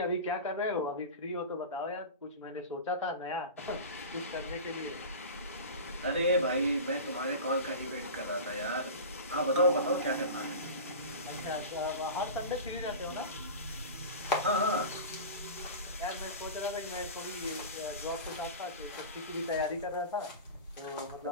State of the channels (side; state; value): both; inverted; correlation -0.30